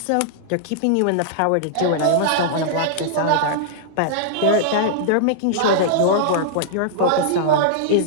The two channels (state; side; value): different; both; correlation -0.02